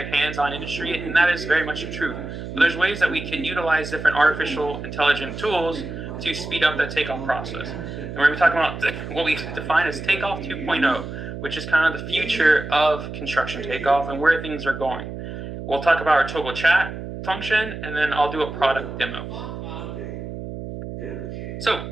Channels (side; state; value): right; noise; hum, 8 dB below the sound